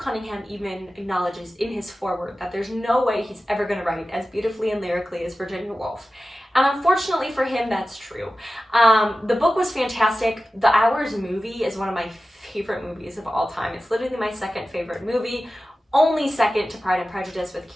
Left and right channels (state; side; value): normal; both; correlation 0.95